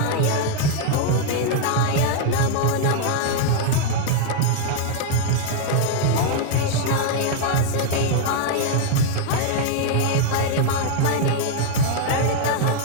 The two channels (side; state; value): both; different; correlation 0.00